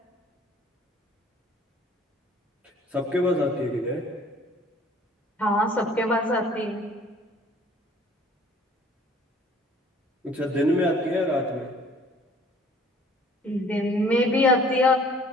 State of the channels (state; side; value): normal; both; correlation 0.54